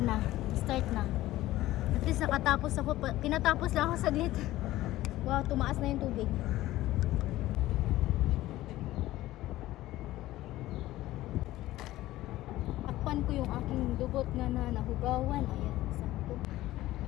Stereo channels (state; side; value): quieter; right; 16.1 dB